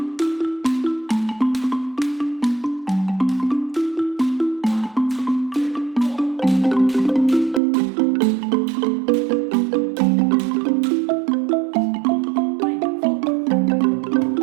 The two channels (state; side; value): drops out; left; at 7.6 s